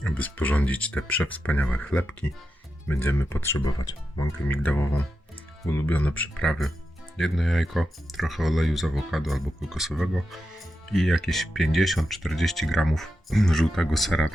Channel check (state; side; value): normal; both; correlation 0.89